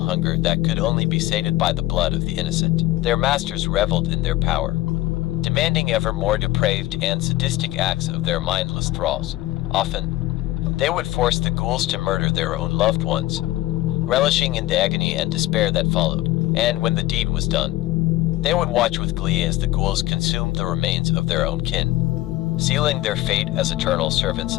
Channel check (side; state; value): right; quieter; 16.8 dB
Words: hunger that could only be sated by the blood of the innocent. Their masters reveled in their power, demanding ever more depraved and sadistic acts of their mindless thralls. Often, they would force the ghouls to murder their own loved ones, relishing in the agony and despair that followed. And when the deed was done, they would watch with glee as the ghouls consumed the remains of their own kin, sealing their fate as eternal servants